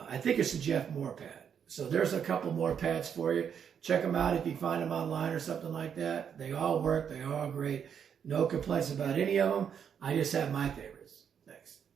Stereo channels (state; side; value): quieter; left; 7.8 dB